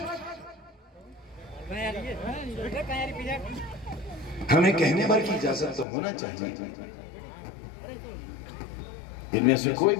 हमें कहने भर की इजाजत तो होना चाहिए। इनमें से कोई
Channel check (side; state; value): right; drops out; at 5.9 s